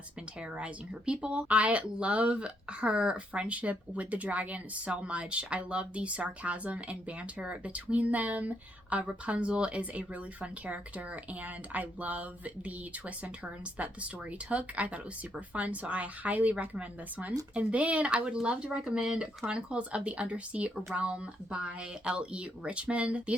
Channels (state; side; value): normal; both; correlation 0.75